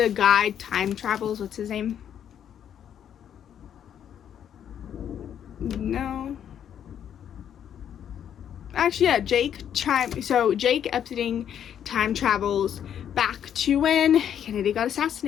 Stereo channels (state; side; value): quieter; right; 9.3 dB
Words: guy time travels. What's his name? No, actually, yeah, Jake Epstein time travels back to when Kennedy got